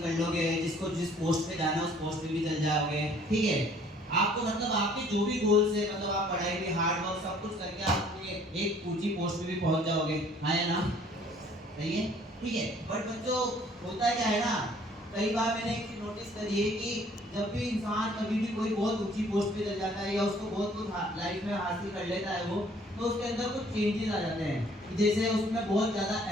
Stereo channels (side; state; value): both; normal; correlation 0.57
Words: लोगे, जिसको जिस पोस्ट पे जाना है उस पोस्ट पे भी चल जाओगे, ठीक है। आपको मतलब आपके जो भी गोल्स है, मतलब आप पढ़ाई भी, हार्ड वर्क सब कुछ करके आप अपनी एक ऊंची पोस्ट पे भी पहुंच जाओगे, है ना? सही है, ठीक है। बट बच्चों, होता क्या है ना, कई बार मैंने एक चीज नोटिस करी है कि जब भी इंसान कभी भी कोई बहुत ऊंची पोस्ट पे चल जाता है या उसको बहुत कुछ लाइफ में हासिल कर लेता है वो, तो उसके अंदर कुछ चेंजेस आ जाते हैं। जैसे उसमें बहुत ज्यादा